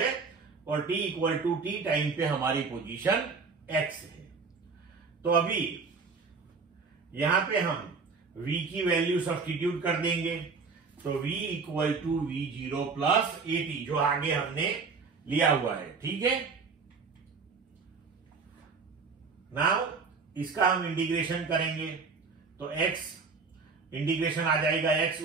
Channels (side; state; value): left; quieter; 4.8 dB